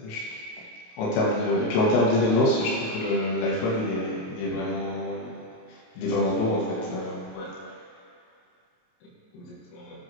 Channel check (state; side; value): late; right; 28 ms